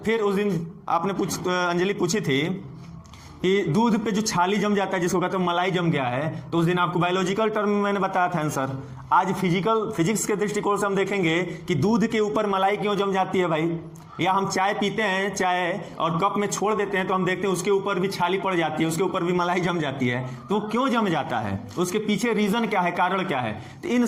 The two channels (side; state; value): both; identical; correlation 1.00